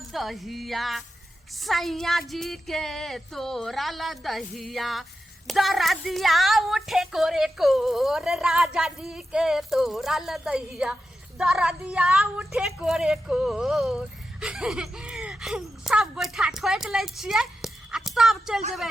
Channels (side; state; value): both; normal; correlation 0.90